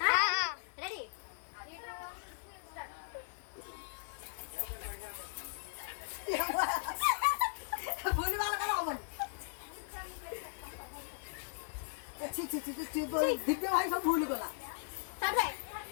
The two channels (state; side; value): silent; right; digital silence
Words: ରେଡି ଭୁଲିବାର କଣ ହବନି ଦିବ୍ୟ ଭାଇ ସବୁ ଭୁଲି ଗଲା